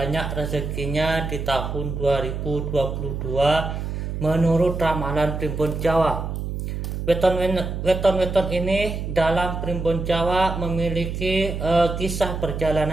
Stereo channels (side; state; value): right; noise; hum, 4 dB below the sound